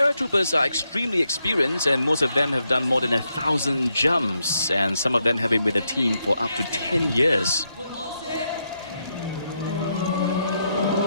are extremely experienced, and most of them have done more than 1,000 jumps, and some of them have been with the team for up to 10 years.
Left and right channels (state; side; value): inverted; both; correlation -0.81